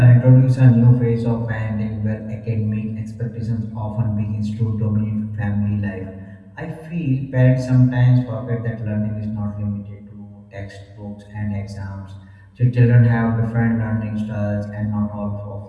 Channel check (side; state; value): both; identical; correlation 1.00